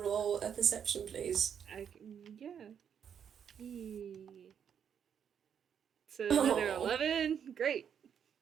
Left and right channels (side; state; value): left; quieter; 8.0 dB